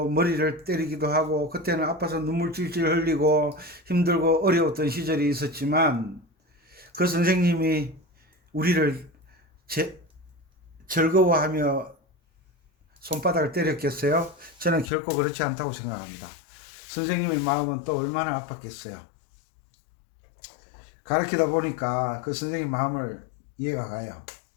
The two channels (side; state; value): right; drops out; at 14.9 s